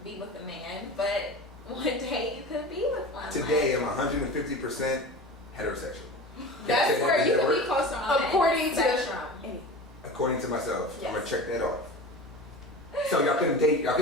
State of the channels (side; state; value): both; normal; correlation 0.33